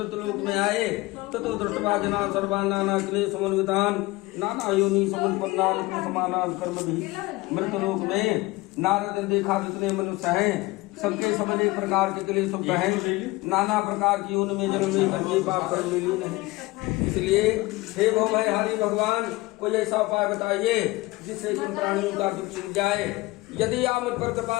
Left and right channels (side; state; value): right; quieter; 20.9 dB